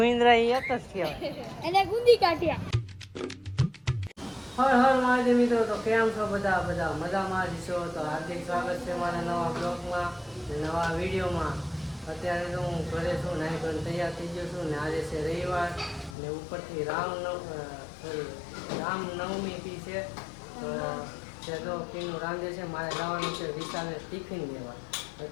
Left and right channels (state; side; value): drops out; right; at 16.2 s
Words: એ એક જ કહેવાય. એને ગુંદી કાઢ્યા. હર હર મહાદેવ મિત્રો, તો કેમ છો બધા મજામાં જ છો? તો હાર્દિક સ્વાગત છે મારા નવા બ્લોગમાં, નવા વિડીયોમાં. અત્યારે તો હું ઘરે છું, નાઈ ધોઈને તૈયાર થઈ ગયો છું ને આજે છે રવિવાર ને ઉપરથી રામનવમી બી છે. તો તે તો પીનું રાંધે છે, મારે જવાનું છે વિશાલે ટિફિન લેવા.